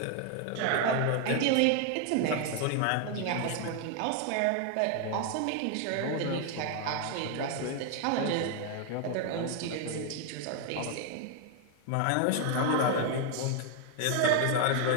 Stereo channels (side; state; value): both; different; correlation 0.00